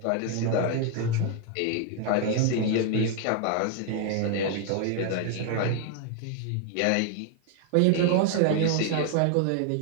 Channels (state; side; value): different; both; correlation 0.00